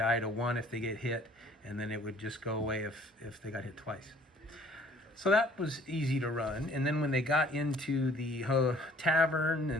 to 1 if they get hit, and then it would just go away if they got hit twice. So that was easy to run. And then when they got into the tavern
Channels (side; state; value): both; normal; correlation 0.56